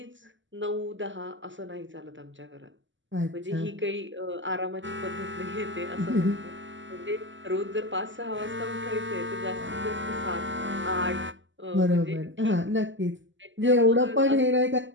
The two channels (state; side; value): late; left; 0.55 ms